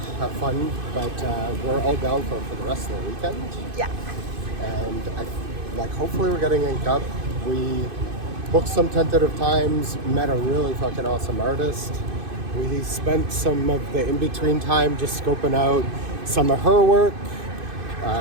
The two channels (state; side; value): late; left; 2.5 ms